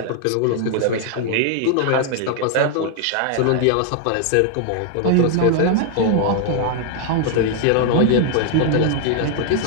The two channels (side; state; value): both; different; correlation 0.00